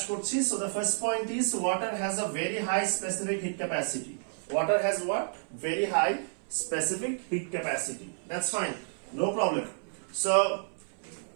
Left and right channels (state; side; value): silent; left; 57 dB below the other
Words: করছি। So the first point is water has a very high specific heat capacity. Water has what? Very high specific heat capacity. That's fine, no problem. So